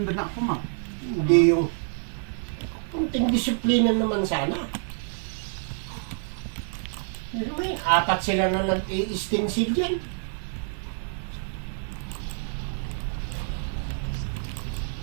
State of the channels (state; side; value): silent; left; 60 dB below the other